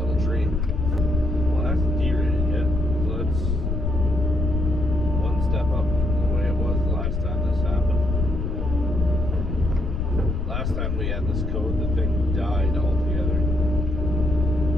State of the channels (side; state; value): left; noise; rumble, 1 dB below the sound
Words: tree. Well, that's derated yet, so that's one step up from the way it was the last time this happened. Last time we had this code, the thing died altogether.